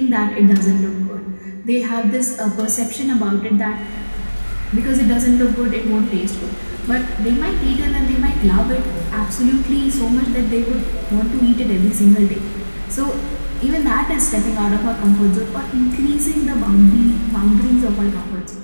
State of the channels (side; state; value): both; inverted; correlation -1.00